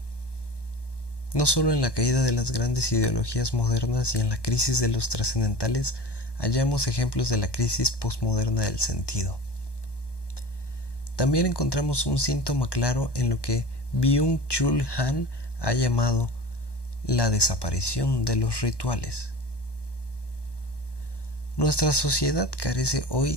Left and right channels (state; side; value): late; right; 1.1 ms